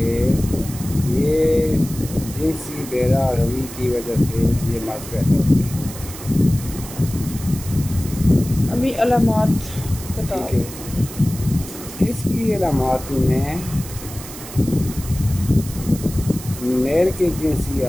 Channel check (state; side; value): noise; right; hiss, 13 dB below the sound